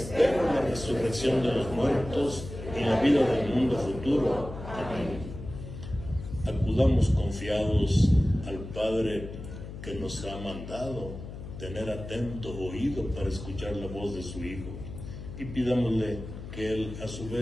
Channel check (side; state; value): left; noise; hum, 11 dB below the sound